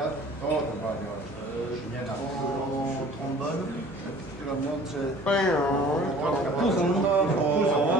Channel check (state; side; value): normal; both; correlation 0.48